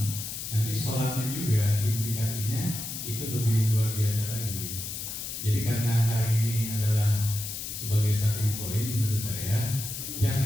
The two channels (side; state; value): left; noise; hiss, 6 dB below the sound